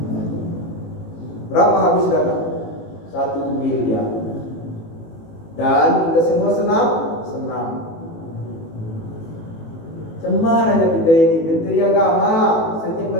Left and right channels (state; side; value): late; right; 18 ms